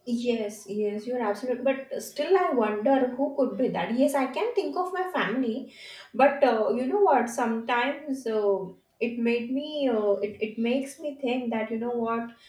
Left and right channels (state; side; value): identical; both; correlation 1.00